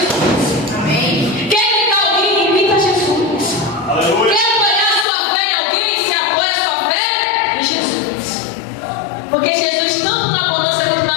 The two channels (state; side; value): drops out; right; at 5.1 s